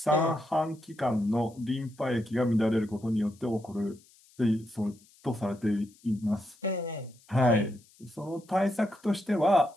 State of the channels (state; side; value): noise; left; hiss, 28 dB below the sound